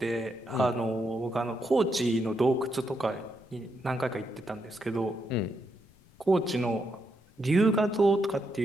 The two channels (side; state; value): left; noise; rumble, 28 dB below the sound